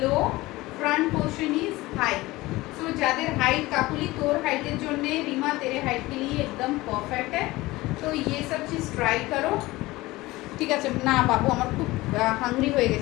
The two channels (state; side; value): quieter; right; 19.7 dB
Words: low, front portion is high. So যাদের हाइट, काकुली तोर हाइटेर জন্য, रीमा तेरे हाइट के लिए एकदम परफेक्ट है, तो ये सब चीज़ ट्राई करो, ঠিক আছে। না বাবু, আমার খুব হাংরি হয়ে